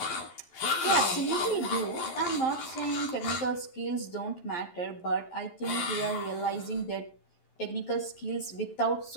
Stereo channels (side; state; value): right; late; 11 ms